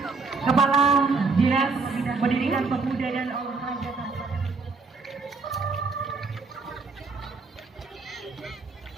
Kepala Dinas Pendidikan Pemuda dan Olahraga Kabupaten.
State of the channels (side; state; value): left; quieter; 4.2 dB